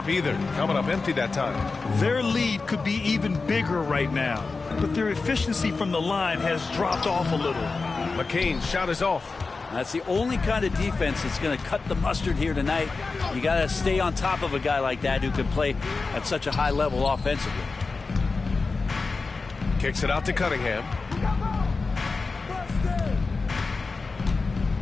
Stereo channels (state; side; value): quieter; right; 4.1 dB